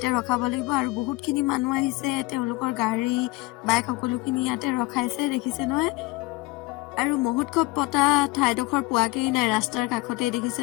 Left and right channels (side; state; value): right; quieter; 22.0 dB